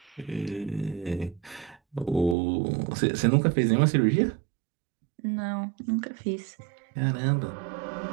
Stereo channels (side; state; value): left; drops out; at 2.4 s